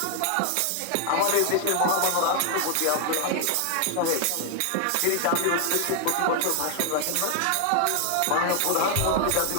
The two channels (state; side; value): different; both; correlation 0.00